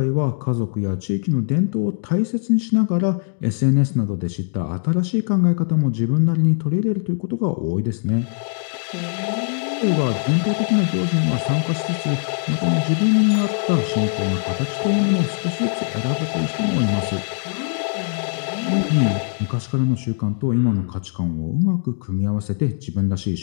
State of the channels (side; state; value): right; silent; digital silence